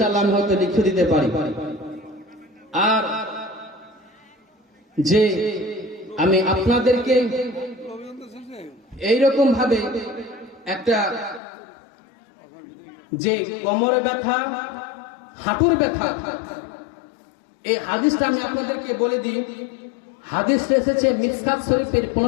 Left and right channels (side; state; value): right; drops out; at 11.4 s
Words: আমি হয়তো লিখে দিতে পারি। আর যে আমি আপনাদেরকে এইরকম ভাবে একটা যে কোমরে ব্যথা, হাঁটুর ব্যথা, এই হাদিসটা আমি আপনাদেরকে বলে দিই। হাদিস এসেছে মিসকাত শরীফের